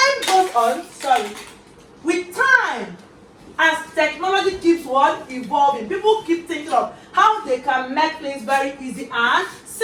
goes on, with time, as technology keeps on evolving, people keep thinking of how they can make things very easy and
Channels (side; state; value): both; identical; correlation 1.00